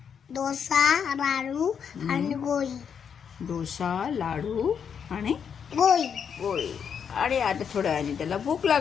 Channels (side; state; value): right; quieter; 7.3 dB